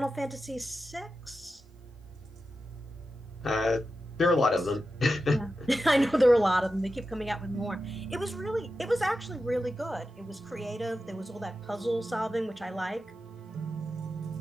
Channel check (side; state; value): both; normal; correlation 0.91